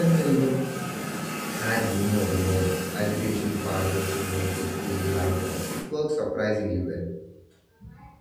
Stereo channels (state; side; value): identical; both; correlation 1.00